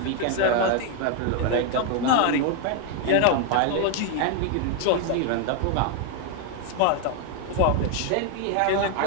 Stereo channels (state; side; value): different; both; correlation 0.00